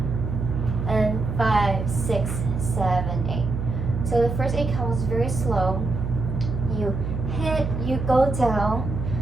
and 5, 6, 7, 8. So the first 8 counts is very slow. You hit, you go down.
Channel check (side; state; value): right; noise; hum, 3 dB below the sound